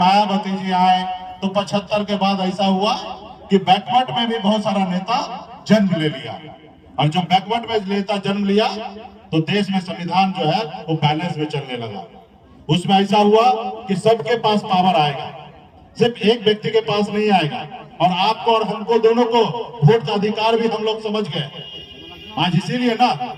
जी आए। तो 75 के बाद ऐसा हुआ कि बैकवर्ड में भी बहुत सारा नेता जन्म ले लिया। और जब बैकवर्ड में नेता जन्म लिया तो देश में संविधान जो है वो बैलेंस में चलने लगा। उसमें ऐसा हुआ कि सबके पास पावर आएगा, सिर्फ एक व्यक्ति के पास नहीं आएगा। और आपको और हमको दोनों को वोट का अधिकार भी हम लोग समझ गए। आज इसीलिए ना,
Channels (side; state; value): both; identical; correlation 1.00